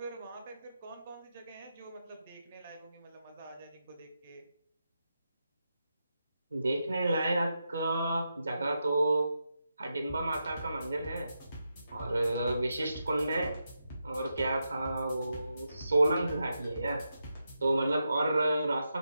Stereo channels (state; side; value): inverted; both; correlation -0.86